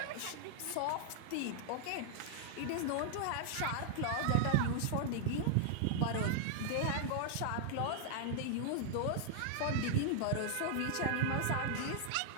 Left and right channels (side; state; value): both; different; correlation -0.01